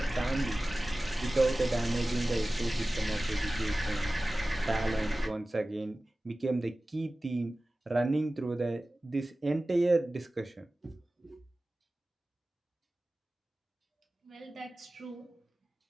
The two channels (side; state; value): both; normal; correlation 0.97